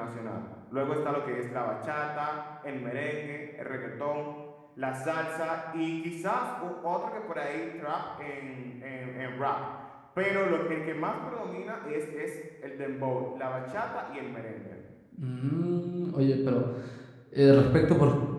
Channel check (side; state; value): both; identical; correlation 1.00